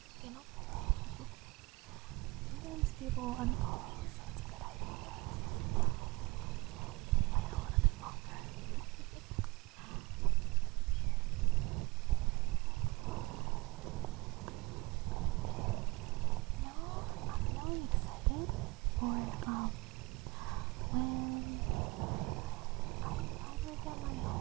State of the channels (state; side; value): quieter; left; 23.7 dB